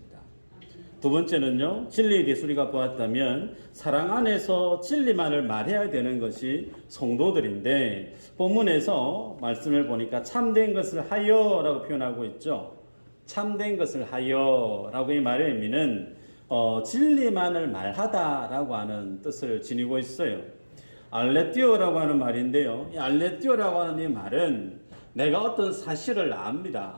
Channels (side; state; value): both; inverted; correlation -1.00